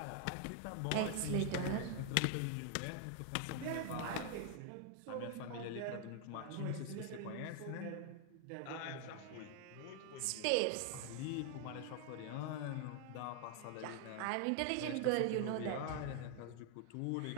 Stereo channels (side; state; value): both; different; correlation 0.00